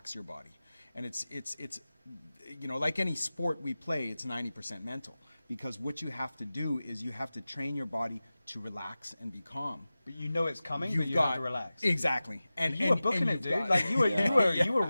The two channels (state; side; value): inverted; both; correlation -0.96